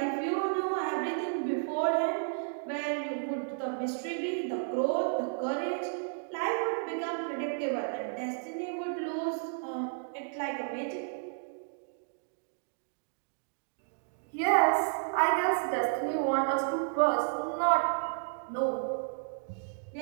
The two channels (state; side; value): silent; left; digital silence